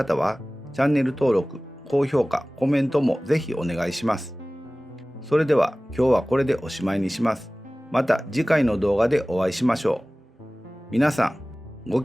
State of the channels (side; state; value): both; normal; correlation 0.98